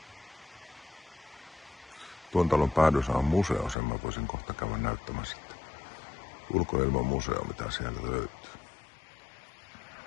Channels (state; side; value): drops out; right; at 3.8 s